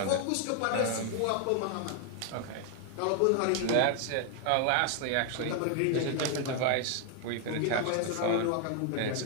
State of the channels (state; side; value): different; both; correlation 0.00